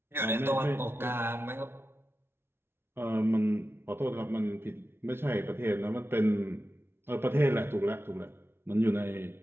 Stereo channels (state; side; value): late; left; 0.11 ms